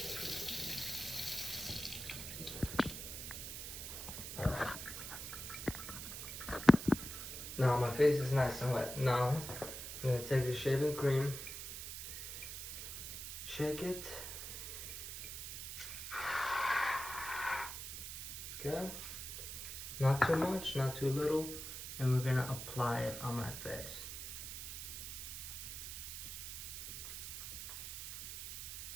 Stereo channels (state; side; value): noise; right; hiss, 7 dB below the sound